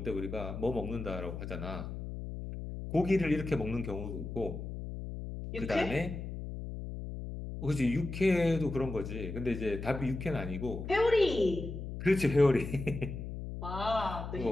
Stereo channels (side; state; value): left; noise; hum, 7 dB below the sound